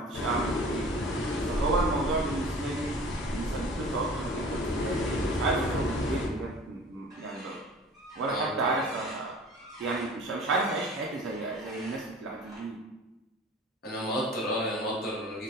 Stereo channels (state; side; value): normal; both; correlation 0.44